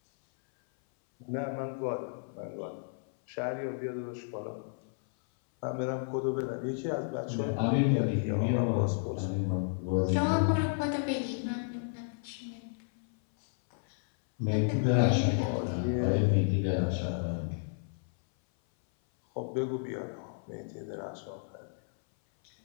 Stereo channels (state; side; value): silent; right; 56 dB below the other